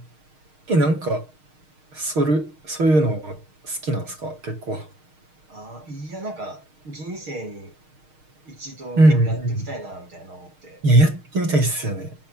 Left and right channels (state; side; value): late; left; 6.5 ms